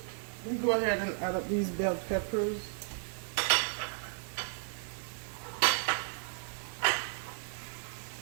We go ahead and add up these bell peppers.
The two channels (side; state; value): left; silent; 55 dB below the other